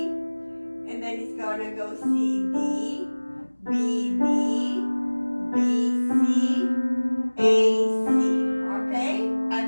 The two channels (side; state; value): both; inverted; correlation -1.00